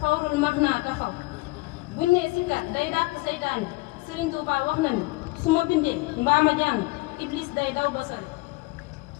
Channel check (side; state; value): right; quieter; 23.2 dB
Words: fawrul max naa taxaw. buñ nee sikkar day dàq seytaane Serigne Touba wax na ni su ma bindee mbaa ma jàng iblis day daw ba sori.